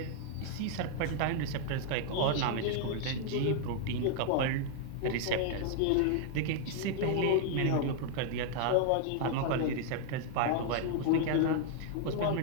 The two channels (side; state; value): both; different; correlation 0.00